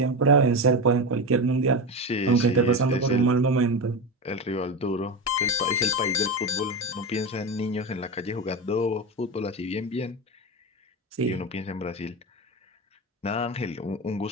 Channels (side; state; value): both; normal; correlation 0.20